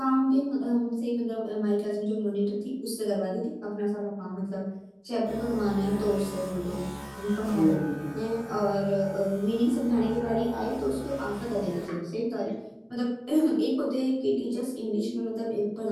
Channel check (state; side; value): identical; both; correlation 1.00